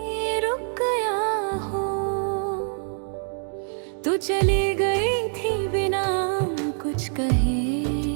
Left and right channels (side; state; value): left; silent; 62 dB below the other